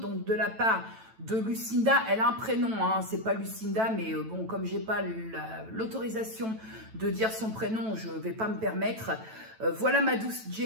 de la part de Lucinda. Elle a un prénom, hein, c'est pas Lucinda, mais bon, comme j'ai pas l'autorisation de dire son prénom, je vais pas me permettre. Voilà ma douce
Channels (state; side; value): late; left; 9.1 ms